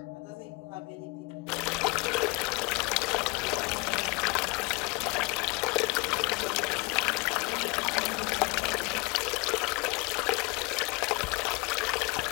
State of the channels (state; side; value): quieter; right; 27.2 dB